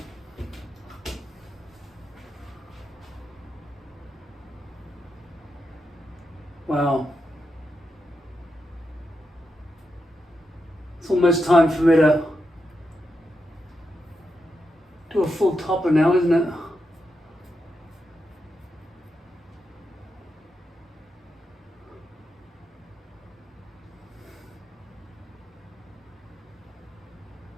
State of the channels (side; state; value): both; normal; correlation 0.86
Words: Wow. It's almost time for me to do a full topper now, isn't it?